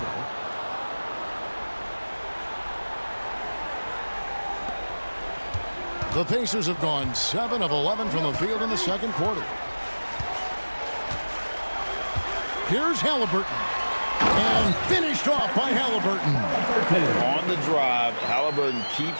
The Pacers have gone 7 of 11 from the field in the second quarter. Here's Halliburton. And finished off by Halliburton. On the drive, Halliburton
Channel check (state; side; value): inverted; both; correlation -1.00